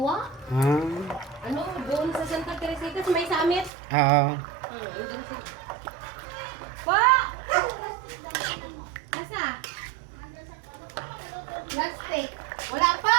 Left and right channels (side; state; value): left; drops out; at 3.7 s